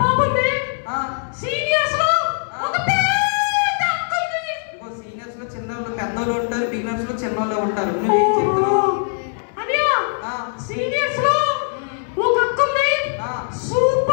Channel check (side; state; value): right; silent; digital silence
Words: బాబు ఉంది. సీనియర్స్ లో ఒక పెద్ద అక్క ఉంది. సీనియర్స్ లో చిన్నోళ్ళు పెద్దోళ్ళు ఉంటారు, బిగినర్స్ లో చిన్నోళ్ళు ఉంటారు. నువ్వేం చెప్తున్నావు? అనియా సీనియర్స్ లో ఒక అక్క ఉంది.